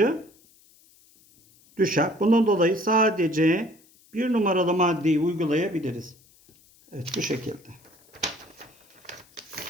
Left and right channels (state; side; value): noise; left; hiss, 29 dB below the sound